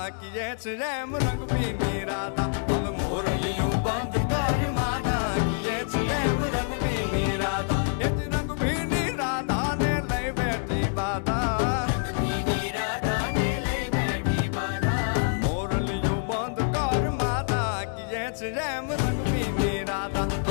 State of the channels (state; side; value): silent; right; digital silence